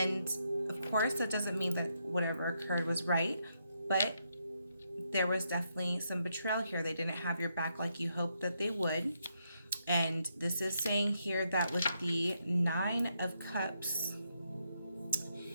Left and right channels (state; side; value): inverted; both; correlation -0.79